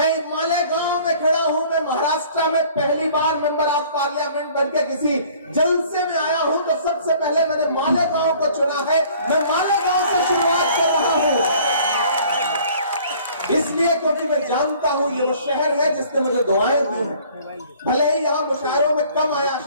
मालेगांव में खड़ा हूं। मैं महाराष्ट्र में पहली बार मेंबर ऑफ पार्लियामेंट बनकर किसी जलसे में आया हूं तो सबसे पहले मैंने मालेगांव को चुना है। मैं मालेगांव से शुरुआत कर रहा हूं, इसलिए क्योंकि मैं जानता हूं ये वो शहर है जिसने मुझे दुआएं दी हैं। भले ही यहाँ मुशायरों में कम आया,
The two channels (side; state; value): both; inverted; correlation -0.53